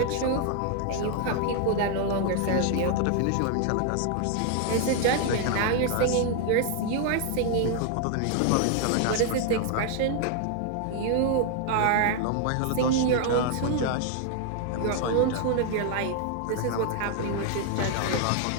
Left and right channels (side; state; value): both; different; correlation 0.00